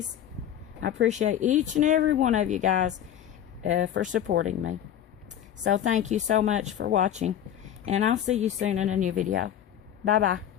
I appreciate each and every one of you guys for supporting me. So thank you so much for watching, and I'll see you soon in a new video. Bye bye.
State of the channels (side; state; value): right; quieter; 10.3 dB